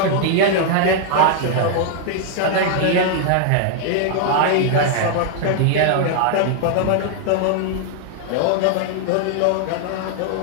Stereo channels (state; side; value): different; both; correlation 0.00